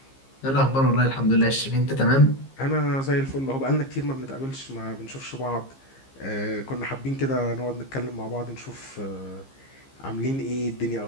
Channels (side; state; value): right; late; 15 ms